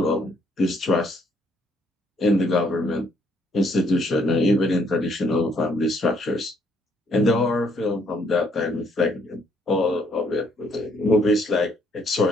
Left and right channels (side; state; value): both; normal; correlation 0.68